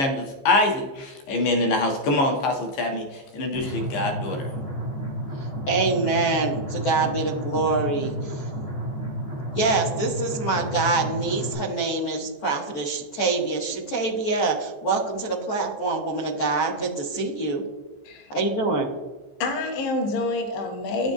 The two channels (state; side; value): late; right; 15 ms